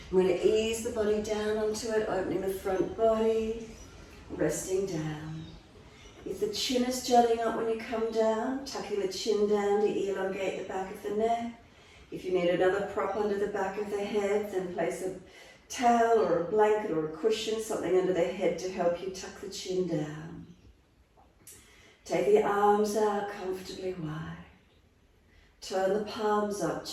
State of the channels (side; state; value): both; identical; correlation 1.00